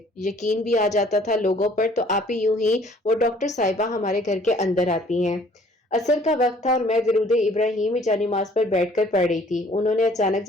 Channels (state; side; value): normal; both; correlation 0.57